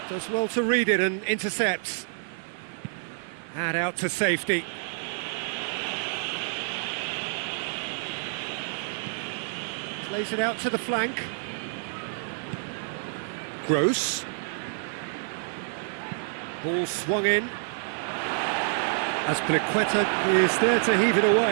does well to read it and intercepts. And out to safety. Plays it out to the flank. Gross. Ball swung in. Azpilicueta is there to heave it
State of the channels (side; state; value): left; silent; 59 dB below the other